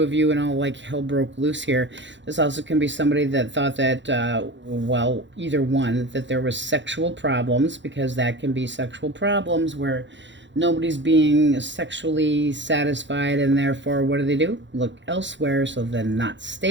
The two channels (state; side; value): late; left; 0.53 ms